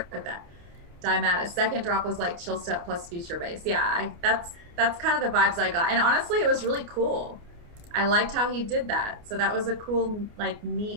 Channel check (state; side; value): late; left; 29 ms